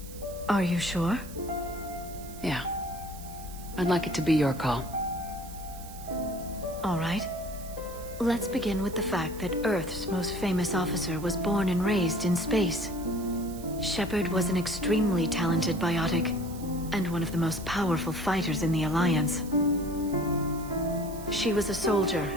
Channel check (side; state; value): right; noise; hiss, 17 dB below the sound